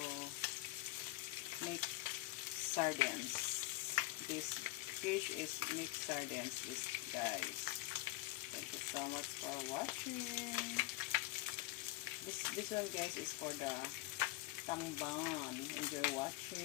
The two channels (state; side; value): quieter; right; 19.1 dB